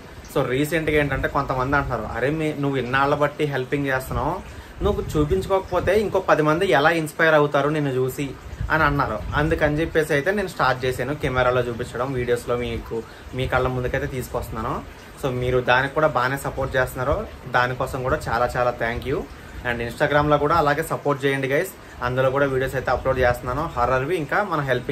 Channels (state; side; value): identical; both; correlation 1.00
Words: సో రీసెంట్గా ఏంటంటే కొంతమంది అంటున్నారు, అరే నువ్వు ఇన్నాళ్ళ బట్టి హెల్పింగ్ చేస్తున్నావు, నువ్వు చూపించుకోకపోతే ఇంకో 10 మంది ఎలా ఇన్స్పైర్ అవుతారు నిన్ను చూసి అని అన్నారు. అందుకని చెప్పేసి అయితే నేను స్టార్ట్ చేశాను కెమెరాలో చూపించడం, వీడియోస్లో మీ కళ్ళ ముందుకైతే తీసుకొస్తున్నాను. సో మీరు దానికి కూడా బాగానే సపోర్ట్ చేస్తున్నారు, దానికోసం కూడా చాలా చాలా థ్యాంక్ యూ. అండ్ ఇన్స్టాగ్రామ్లో కూడా అలాగే సపోర్ట్ చేయండి గైస్. అందులో కూడా వీడియోస్ అయితే అప్లోడ్ చేస్తున్నాను, హర్రర్వి ఇంకా మన